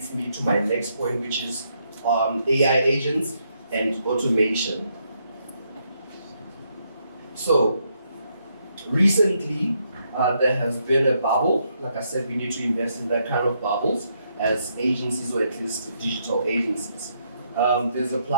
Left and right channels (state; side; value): inverted; both; correlation -0.76